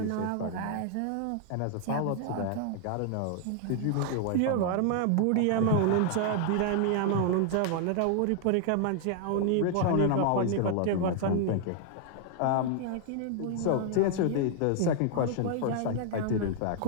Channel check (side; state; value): both; different; correlation 0.00